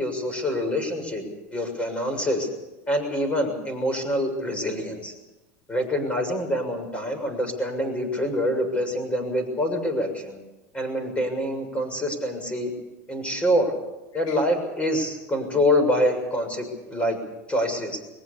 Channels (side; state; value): both; normal; correlation 0.44